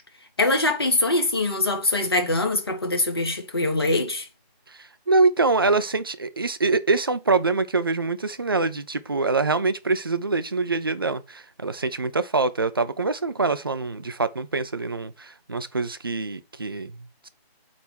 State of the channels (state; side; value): inverted; both; correlation -0.42